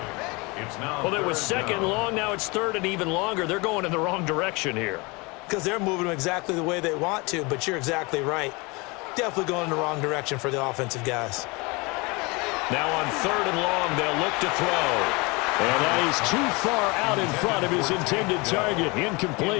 Well, it was 2nd and long. Now it's 3rd and even longer. They're going in the wrong direction here. Because they're moving them exactly the way they want to, but you're exactly right. Definitely going in the wrong direction for the offensive guys. Now on 3rd and long, they'll look to throw. And that is too far out in front of his intended target.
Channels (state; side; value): quieter; right; 26.7 dB